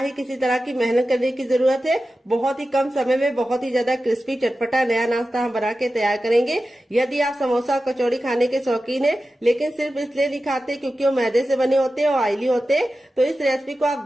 किसी तरह की मेहनत करने की जरूरत है। बहुत ही कम समय में बहुत ही ज्यादा क्रिस्पी चटपटा नया नाश्ता हम बना के तैयार करेंगे। यदि आप समोसा और कचौड़ी खाने के शौकीन है लेकिन सिर्फ इसलिए नहीं खाते क्योंकि वो मैदे से बने होते हैं और ऑयली होते हैं, तो इस रेसिपी को आप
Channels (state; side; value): normal; both; correlation 0.93